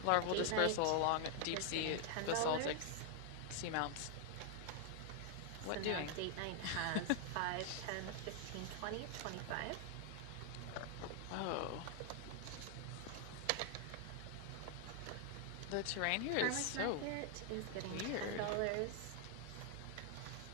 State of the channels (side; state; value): both; different; correlation 0.00